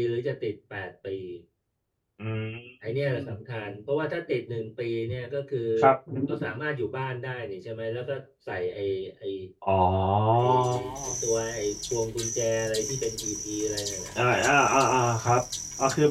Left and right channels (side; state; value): both; identical; correlation 1.00